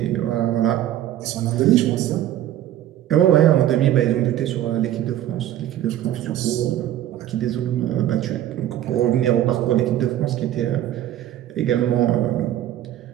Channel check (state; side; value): quieter; left; 12.4 dB